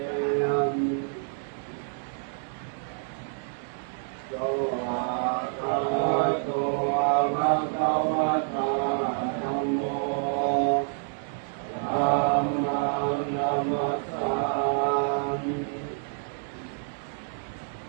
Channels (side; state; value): left; silent; 59 dB below the other